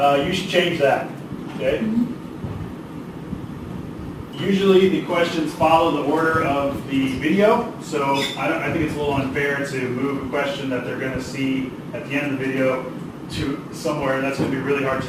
You should change that, okay? Usually the questions follow the order of the video, so I think it's a little unfair to move a question that they're going to see at the end of the video to somewhere that's going to be really hard to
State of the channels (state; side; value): identical; both; correlation 1.00